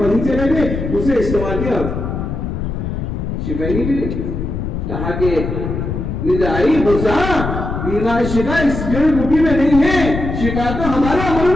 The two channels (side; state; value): left; noise; rumble, 4 dB below the sound